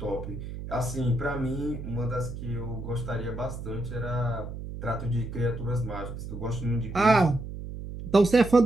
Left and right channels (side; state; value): right; noise; hum, 9 dB below the sound